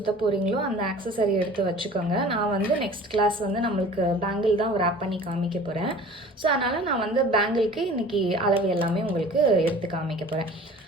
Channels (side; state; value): both; normal; correlation 0.44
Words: போகிறீங்களோ அந்த ஆக்சசரி எடுத்து வச்சுக்கோங்க. நான் வந்து நெக்ஸ்ட் கிளாஸ் வந்து நம்மளுக்கு பேங்கிள் தான் ரேப் பண்ணி காமிக்க போகிறேன். ஸோ அதனால் நான் வந்து பேங்கிளுக்கு இன்றைக்கி அளவு எல்லாமே உங்களுக்கு எடுத்து காமிக்க போகிறேன்.